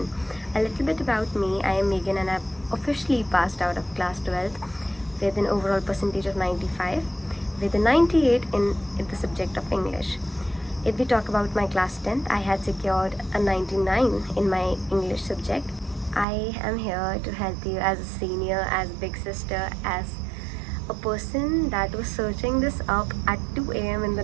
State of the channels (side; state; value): left; drops out; at 16.2 s